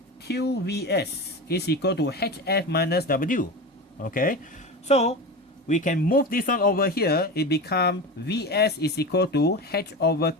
QVS is equal to HF minus W. Okay, so we can move this one over here. It becomes Vs is equal to H over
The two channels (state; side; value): normal; both; correlation 0.26